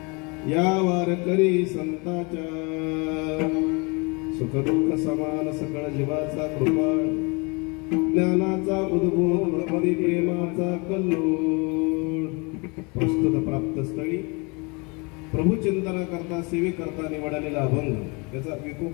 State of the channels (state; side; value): quieter; right; 29.8 dB